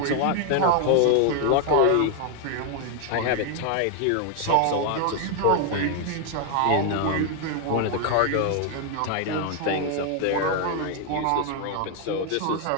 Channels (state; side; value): different; both; correlation 0.00